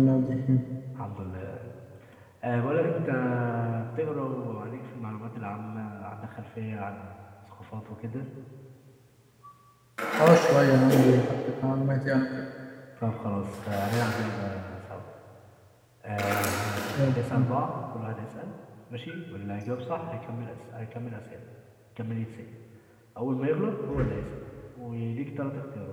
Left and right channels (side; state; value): both; identical; correlation 1.00